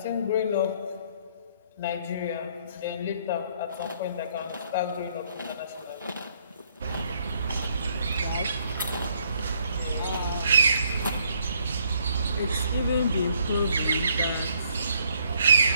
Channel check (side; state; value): both; inverted; correlation -0.68